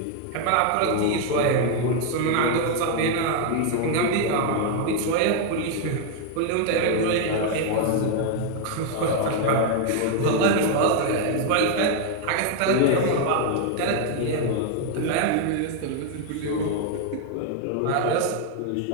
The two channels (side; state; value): both; different; correlation 0.00